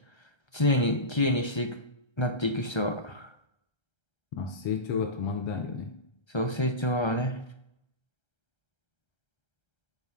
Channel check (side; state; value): right; late; 1.3 ms